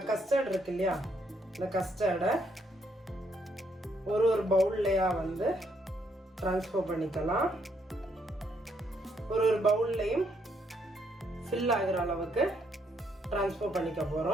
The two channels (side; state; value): both; normal; correlation 0.73